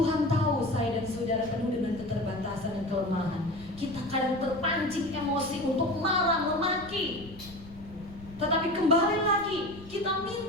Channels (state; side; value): noise; left; rumble, 17 dB below the sound